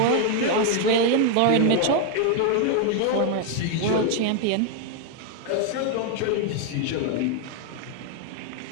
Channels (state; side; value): different; both; correlation 0.00